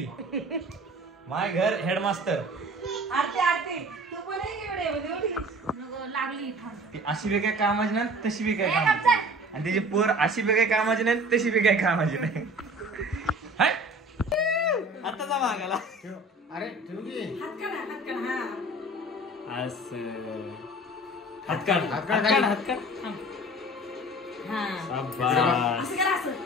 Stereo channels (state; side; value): normal; both; correlation 0.44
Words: माय घर हेडमास्टर. आरती तू पण लागली ती अशी बी काय कामाची नाही, तशी बी काय कामाची नाही. आणि तिची पोर अशी बी काय कामाची नाही, तशी बी काय कामाची नाही. आताचा मागाला. अरे